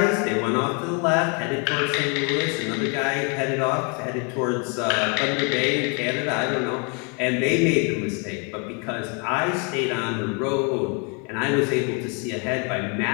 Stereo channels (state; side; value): quieter; right; 35.3 dB